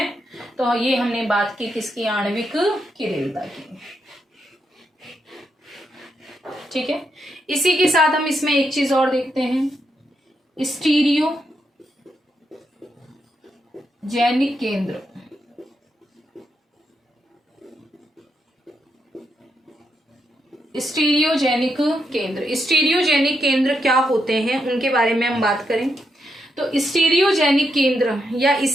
तो ये हमने बात की किसकी, आणविक किरेलता की। ठीक है, इसी के साथ हम इसमें एक चीज और देखते हैं, स्टीरियो जैनिक केंद्र। स्टीरियोजेनिक केंद्र, स्टीरियोजेनिक केंद्र क्या होते हैं उनके बारे में हम बात करें तो स्टीरियोजेनिक केंद्र, या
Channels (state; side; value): normal; both; correlation 0.81